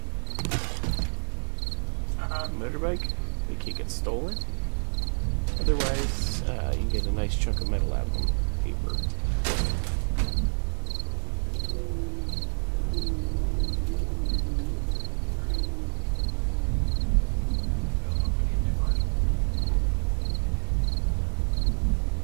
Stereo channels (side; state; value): left; silent; 60 dB below the other